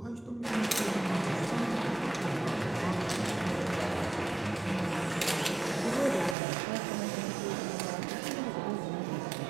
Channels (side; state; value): left; drops out; at 6.4 s